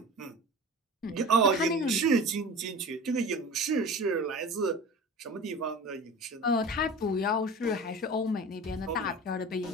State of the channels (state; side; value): normal; both; correlation 0.36